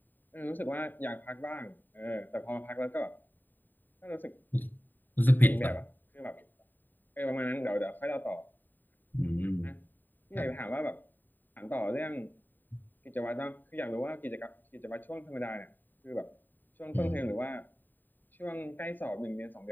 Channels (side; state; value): right; late; 0.090 ms